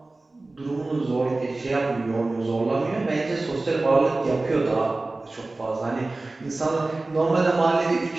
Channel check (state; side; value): quieter; left; 3.1 dB